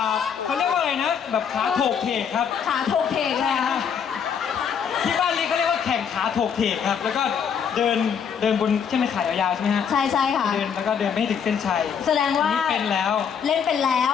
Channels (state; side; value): quieter; right; 7.3 dB